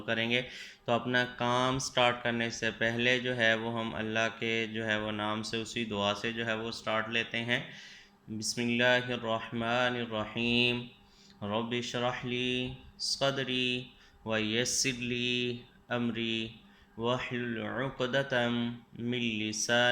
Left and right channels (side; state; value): both; identical; correlation 1.00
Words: करेंगे। तो अपना काम स्टार्ट करने से पहले जो है वो हम अल्लाह के जो है वो नाम से उसी दुआ से जो है वो स्टार्ट लेते हैं। बिस्मिल्लाहिर्रहमानिर्रहीम। रब्बि इश्रह ली सदरी व यस्सिर ली अमरी वहलुल उक़दतम मिन